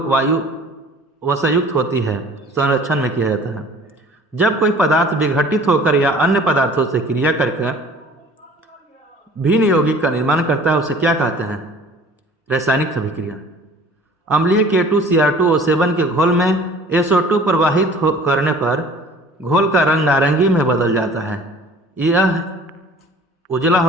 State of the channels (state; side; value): normal; both; correlation 0.48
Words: वायु वसायुक्त होती है संरक्षण में किया जाता है। जब कोई पदार्थ विघटित होकर या अन्य पदार्थों से क्रिया करके भिन्न यौगिक का निर्माण करता है उसे क्या कहते हैं? रासायनिक अभिक्रिया। अम्लीय K2Cr2O7 के घोल में SO2 प्रवाहित करने पर घोल का रंग नारंगी में बदल जाता है। यह उजला